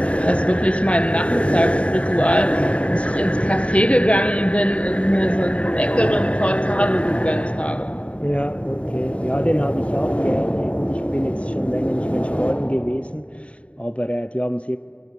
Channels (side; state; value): right; late; 0.063 ms